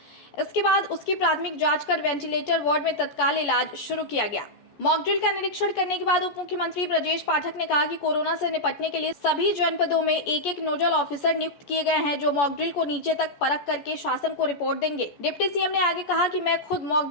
इसके बाद उसकी प्राथमिक जांच कर वेंटिलेटर वार्ड में तत्काल इलाज शुरू किया गया। मॉक ड्रिल का निरीक्षण करने के बाद उप मुख्यमंत्री ब्रजेश पाठक ने कहा कि कोरोना से निपटने के लिए सभी जनपदों में एक एक नोडल ऑफिसर नियुक्त किए गए हैं, जो मॉक ड्रिल को नीचे तक परख करके शासन को रिपोर्ट देंगे। डिप्टी सीएम ने आगे कहा कि मैं खुद मॉक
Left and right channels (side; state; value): right; late; 14 ms